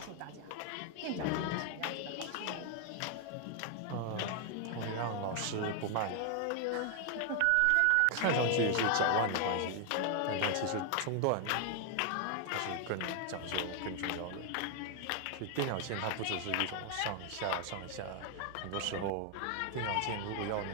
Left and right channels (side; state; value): both; different; correlation 0.00